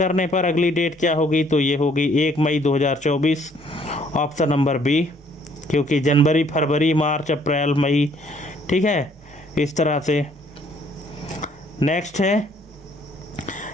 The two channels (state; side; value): normal; both; correlation 0.63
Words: पर अगली डेट क्या होगी, तो ये होगी 1 मई 2024, ऑप्शन नंबर बी, क्योंकि जनवरी, फरवरी, मार्च, अप्रैल, मई, ठीक है, इस तरह से। नेक्स्ट है,